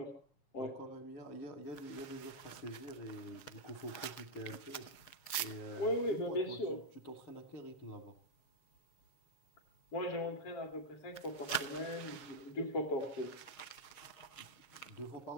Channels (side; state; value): right; late; 7.2 ms